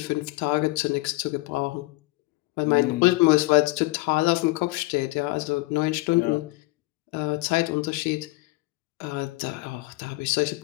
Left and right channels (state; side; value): quieter; right; 21.6 dB